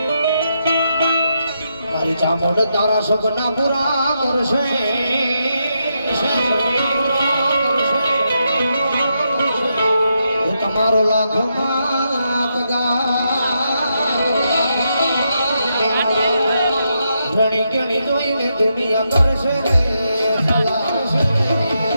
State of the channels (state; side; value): inverted; both; correlation -0.82